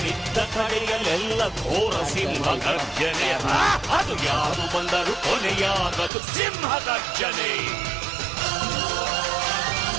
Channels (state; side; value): drops out; left; at 6.1 s